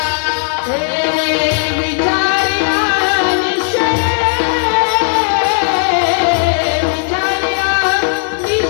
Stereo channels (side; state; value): right; silent; digital silence